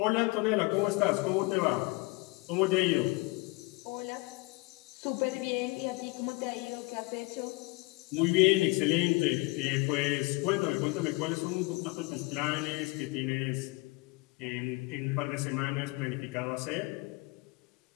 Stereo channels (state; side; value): quieter; right; 25.2 dB